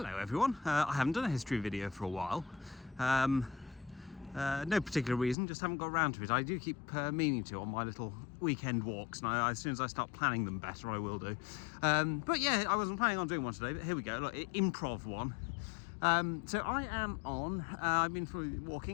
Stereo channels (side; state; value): right; drops out; at 5.4 s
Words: everyone, I haven't done a history video for a while. No particular reason, just haven't got around to it. I do keep meaning to on my little weekend walks, and as soon as I start planning them better I will do. But yeah, I wasn't planning on doing one today, but here we go, look, improv one. So I am on, I've been